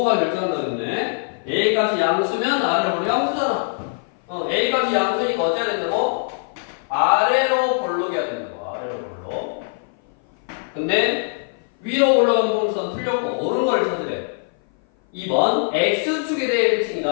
결정한다고 그랬네. a 값이 양수면 아래로 볼록 양수잖아. a 값이 양수니까 어째야 된다고? 아래로 볼록이어야 된다고. 아래로 볼록. 근데 위로 볼록은 동선 틀렸고 옳은 걸 찾으래. 2번 x축에 대해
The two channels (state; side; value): silent; right; 57 dB below the other